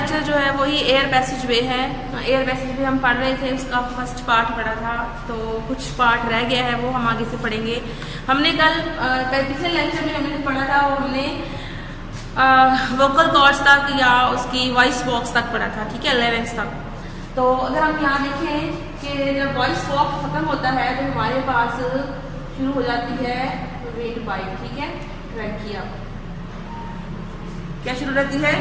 जो है वही एयर पैसेज वे है। एयर पैसेज वे हम पढ़ रहे थे, उसका फर्स्ट पार्ट पढ़ा था, तो कुछ पार्ट रह गया है वो हम आगे से पढ़ेंगे। हमने कल पिछले लेक्चर में हमने पढ़ा था वो हमने वोकल कॉर्ड्स तक या उसकी वॉइस बॉक्स तक पढ़ा था, ठीक है, लेवेंस तक। तो अगर हम यहाँ देखें कि जब वॉइस बॉक्स खत्म होता है तो हमारे पास शुरू हो जाती है विंड पाइप, ठीक है, ट्रैकिया। क्या शुरू रहती है?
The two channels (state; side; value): identical; both; correlation 1.00